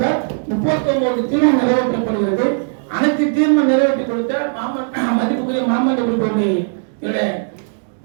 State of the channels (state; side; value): silent; left; digital silence